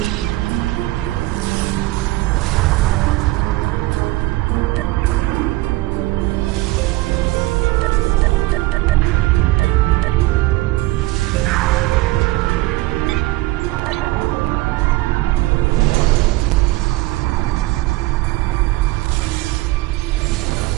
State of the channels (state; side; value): quieter; left; 19.2 dB